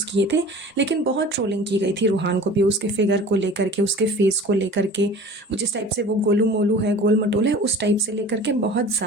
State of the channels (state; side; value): normal; both; correlation 0.42